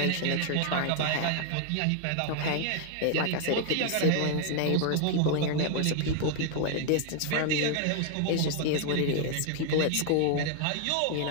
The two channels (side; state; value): both; different; correlation 0.00